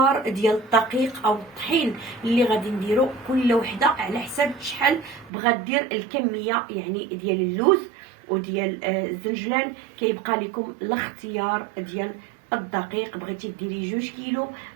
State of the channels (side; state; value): left; drops out; at 5.3 s